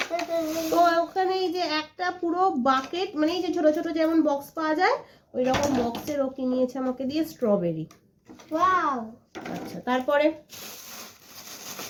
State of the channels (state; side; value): identical; both; correlation 1.00